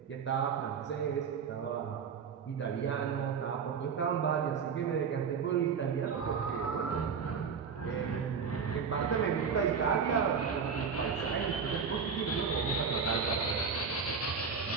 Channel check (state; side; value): quieter; left; 6.2 dB